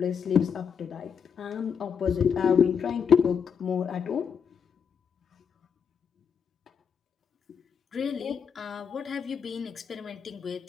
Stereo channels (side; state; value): right; quieter; 7.0 dB